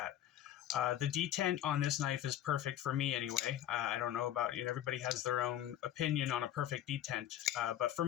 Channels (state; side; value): quieter; right; 11.7 dB